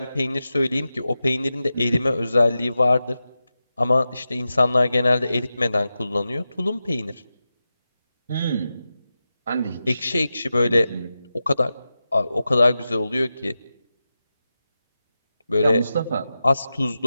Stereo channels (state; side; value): inverted; both; correlation -0.92